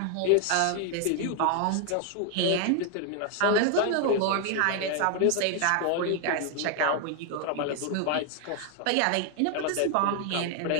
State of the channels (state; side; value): different; both; correlation 0.00